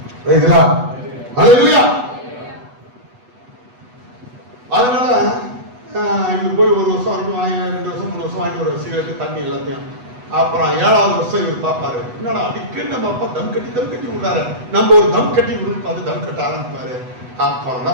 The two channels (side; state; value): left; late; 8.1 ms